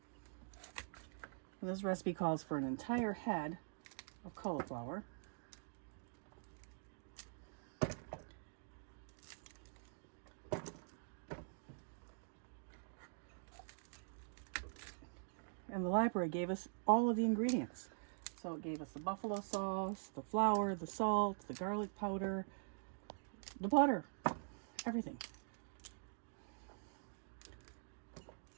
And this recipe calls for an entire head of cauliflower. And the library gave us all of the ingredients. So it gave us the buffalo sauce, the flour, the salt, the garlic powder, the butter, everything.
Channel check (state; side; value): silent; left; digital silence